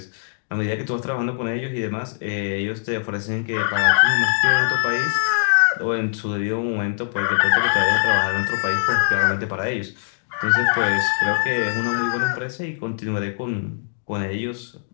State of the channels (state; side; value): silent; right; 64 dB below the other